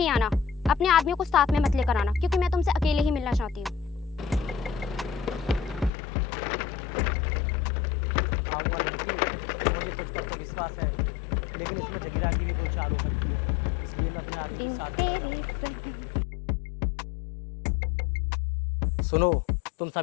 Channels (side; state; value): right; drops out; at 5.9 s